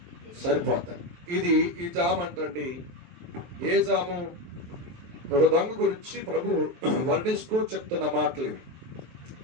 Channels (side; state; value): left; late; 23 ms